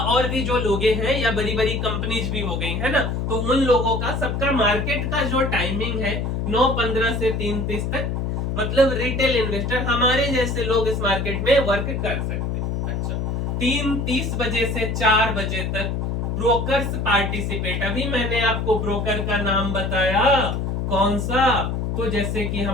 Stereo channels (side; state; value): left; noise; hum, 1 dB below the sound